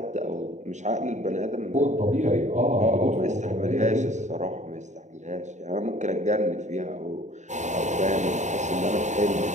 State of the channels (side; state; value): left; late; 0.34 ms